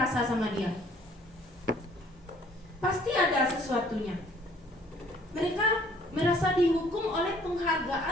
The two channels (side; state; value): both; normal; correlation 0.58